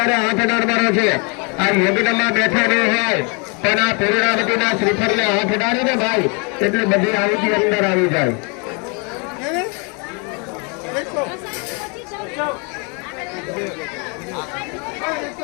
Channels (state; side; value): quieter; right; 33.5 dB